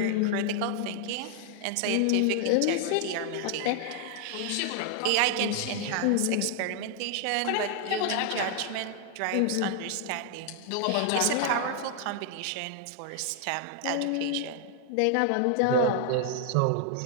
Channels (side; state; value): both; different; correlation 0.00